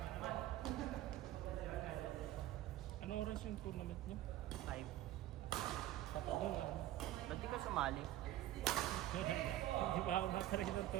Ano oras yung tournament niyo? 5. Sapat doon, ano? Ba't di ka sumali? Hindi pa ako nakarin ng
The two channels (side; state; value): left; quieter; 14.1 dB